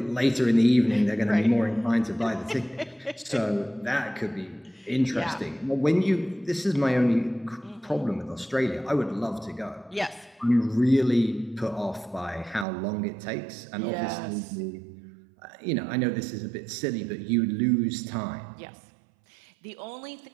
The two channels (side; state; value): left; drops out; at 12.7 s